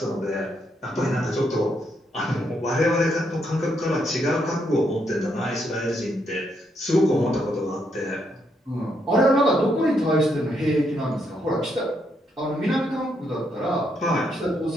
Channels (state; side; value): normal; both; correlation 0.77